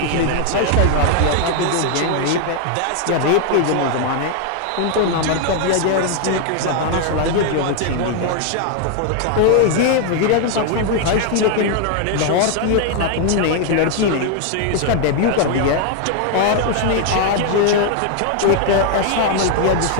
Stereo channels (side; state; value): both; different; correlation 0.00